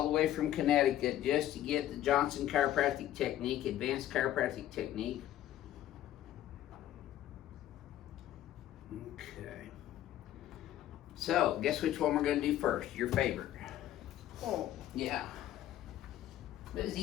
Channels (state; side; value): quieter; right; 12.7 dB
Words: the way from Connecticut just to get the Johnson chiropractic technique, advanced chiropractic technique. Okay. So, guess which one we're going to do first? Your favorite. Oh. Yeah. It was